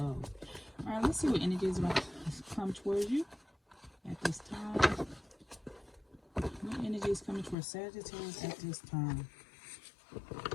Alright, let's see what energy is about to come towards you at this time. What energy is coming towards Sagittarius at this time?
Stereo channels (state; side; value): drops out; right; at 7.6 s